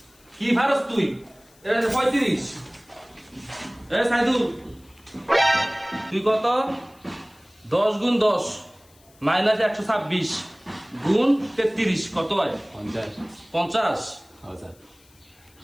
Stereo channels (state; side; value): noise; left; hiss, 29 dB below the sound